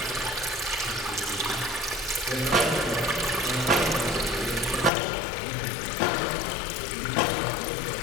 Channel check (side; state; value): right; drops out; at 4.9 s